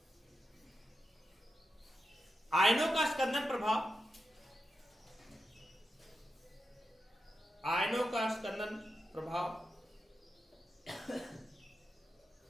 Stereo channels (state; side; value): normal; both; correlation 0.89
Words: आयनों का स्कंदन प्रभाव, आयनों का स्कंदन प्रभाव